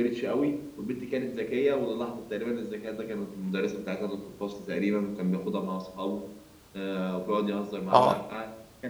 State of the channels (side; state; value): both; identical; correlation 1.00